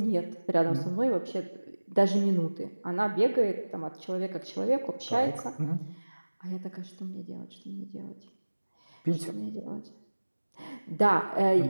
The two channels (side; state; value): both; inverted; correlation -1.00